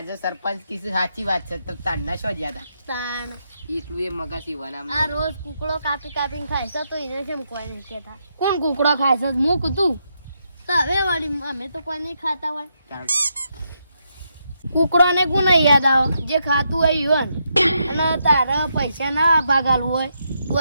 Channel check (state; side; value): inverted; both; correlation -0.80